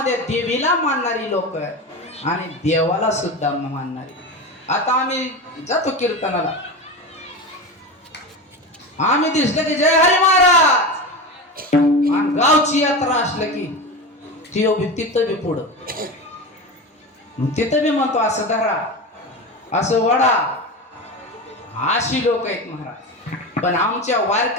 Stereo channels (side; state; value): both; normal; correlation 0.24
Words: देवीला मानणारी लोक आहेत आणि देवाला सुद्धा मानणारी. आता आम्ही जातो कीर्तनाला आम्ही दिसलं की जय हरी महाराज आणि गावची यात्रा असलं की तिथं बी पुढं तिथं बी म्हणतो असं धरा असं वडा अशी लोक आहेत महाराज. पण आमच्या